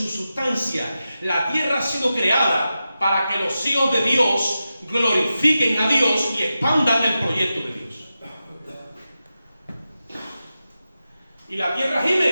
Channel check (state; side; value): inverted; both; correlation -0.91